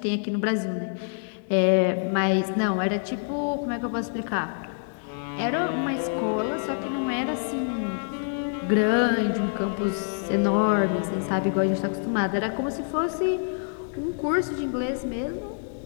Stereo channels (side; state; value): right; silent; digital silence